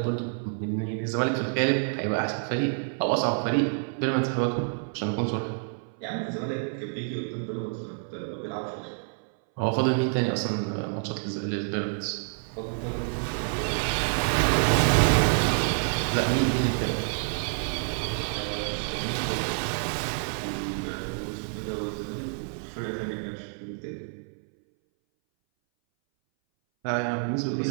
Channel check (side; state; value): left; silent; 59 dB below the other